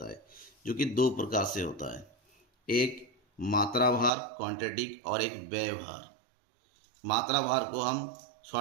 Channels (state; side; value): drops out; left; at 4.1 s